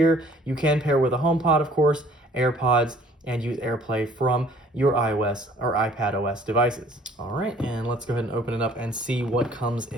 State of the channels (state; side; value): normal; both; correlation 0.55